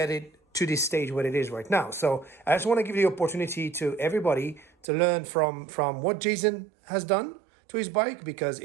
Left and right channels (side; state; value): left; drops out; at 4.9 s